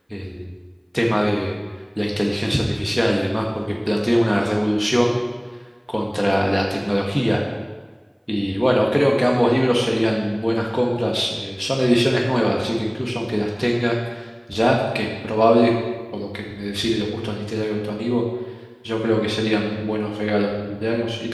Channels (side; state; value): both; identical; correlation 1.00